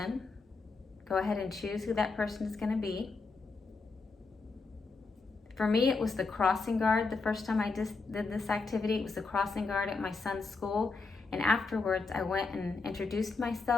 Go ahead and choose who that person is going to be. For me, it was the crossing guard. The first time I did this activity, it was the crossing guard at my son's school. And afterwards, I went and introduced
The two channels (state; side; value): quieter; right; 4.1 dB